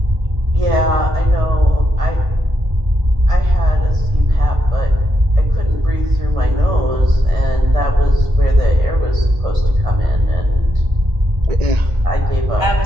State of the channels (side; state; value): left; late; 1.5 ms